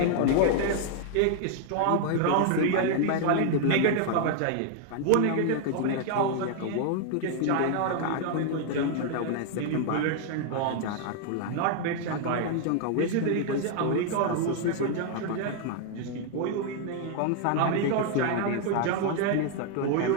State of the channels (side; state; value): both; different; correlation 0.00